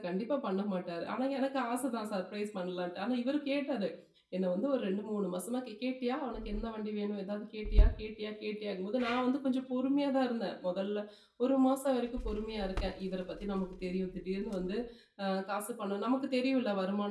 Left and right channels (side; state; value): both; identical; correlation 1.00